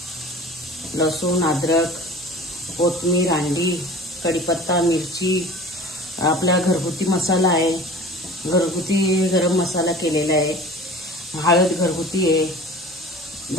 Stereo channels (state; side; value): normal; both; correlation 0.41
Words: लसूण, अद्रक, कोथिंबीर, अंडी, कढीपत्ता, मिरची, आपला घरगुती मसाला आहे, घरगुती गरम मसाला केलेला आहे, हळद घरगुती आहे,